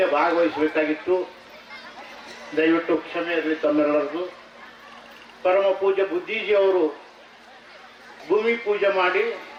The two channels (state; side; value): identical; both; correlation 1.00